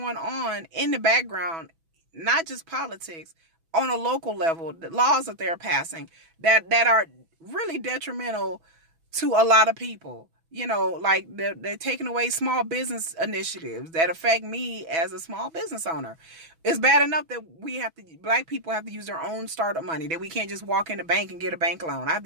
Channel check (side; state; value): left; late; 6.1 ms